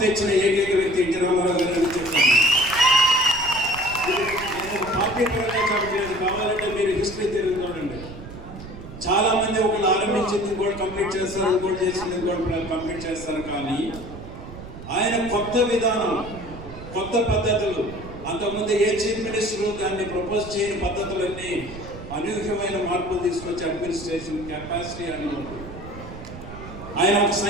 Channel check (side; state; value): right; noise; rumble, 13 dB below the sound